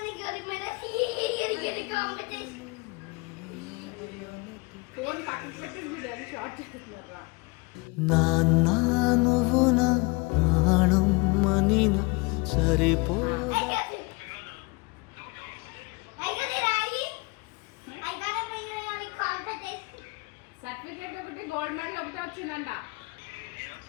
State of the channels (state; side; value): quieter; right; 27.2 dB